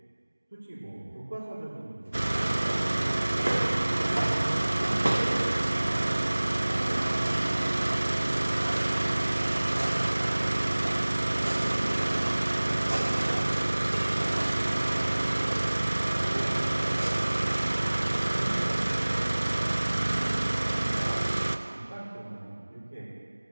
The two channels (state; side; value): inverted; both; correlation -1.00